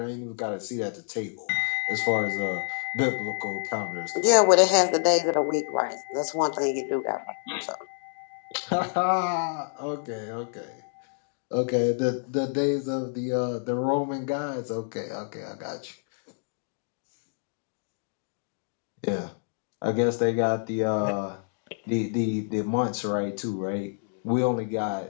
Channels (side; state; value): right; silent; digital silence